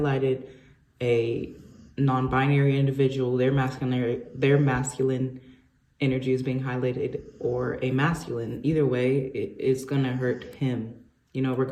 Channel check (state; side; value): identical; both; correlation 1.00